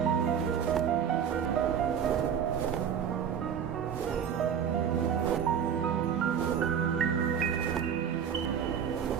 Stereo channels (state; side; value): quieter; left; 8.1 dB